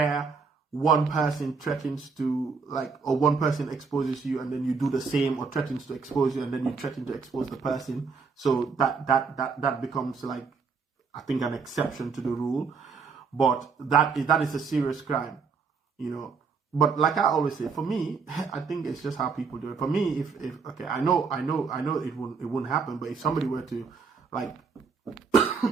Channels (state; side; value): quieter; left; 5.2 dB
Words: one person threatens to or one person exposes you and then you do the same, or threatens to expose you and then you threaten to expose the person. So that becomes I think an exception to the rule. But that is a serious crime, But like I always say, for me, I think it's just how people do it. For me, if okay, I know it wouldn't happen, but if somebody were to